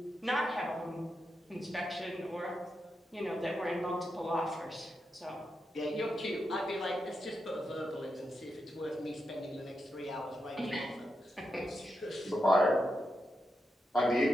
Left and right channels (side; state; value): both; normal; correlation 0.86